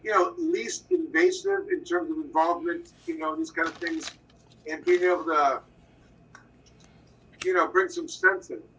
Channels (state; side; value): identical; both; correlation 1.00